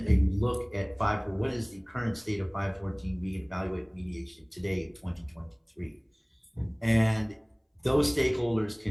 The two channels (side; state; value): both; identical; correlation 1.00